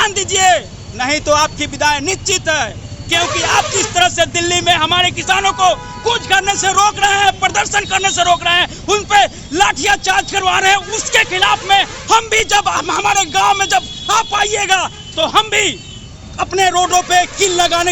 दीजिए, नहीं तो आपकी विदाई निश्चित है। क्योंकि आप जिस तरह से दिल्ली में हमारे किसानों को कूच करने से रोक रहे हैं, प्रदर्शन करने से रोक रहे हैं, उन पे लाठियां चार्ज करवा रहे हैं, उसके खिलाफ में हम भी जब हमारे गांव में जब आप आइएगा तो हम भी अपने रोडों पे किल लगाने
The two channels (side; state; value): both; identical; correlation 1.00